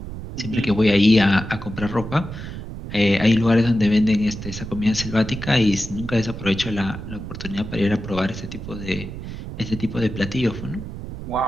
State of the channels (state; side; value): noise; right; rumble, 9 dB below the sound